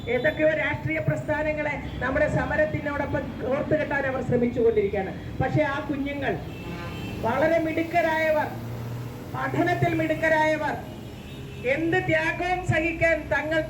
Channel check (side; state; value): both; identical; correlation 1.00